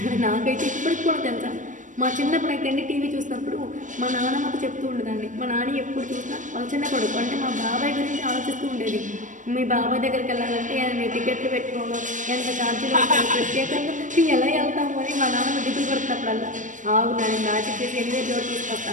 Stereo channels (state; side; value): late; left; 0.37 ms